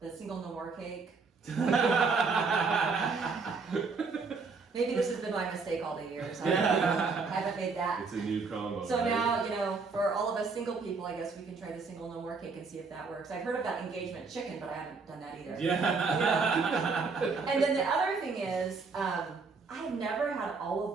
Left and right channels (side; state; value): left; quieter; 4.6 dB